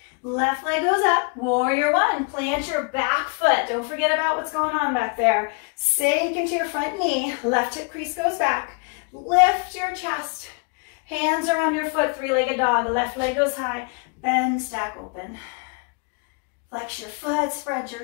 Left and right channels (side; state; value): right; quieter; 34.2 dB